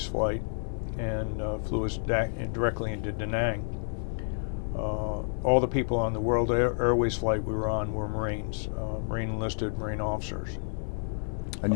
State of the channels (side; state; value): right; silent; digital silence